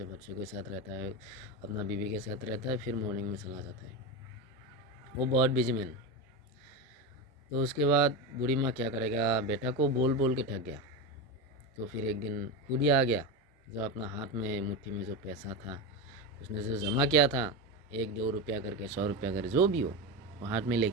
बच्चों के साथ रहता है, अपना बीवी के साथ रहता है, फिर मॉर्निंग में चला जाता है। वो बहुत बिजी मैन। तो उसके बाद बूढ़ी माँ क्या करेगा, बेटा को बोल बोल के थक गया। तो फिर एक दिन खुद ही आ गया, जो अपना हाथ में मुट्ठी में जो पैसा था उसने जो जमा किया था, 1-2 रुपया करके, 100 रुपया करके, जो भी हो, वो हाथ में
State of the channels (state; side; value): normal; both; correlation 0.17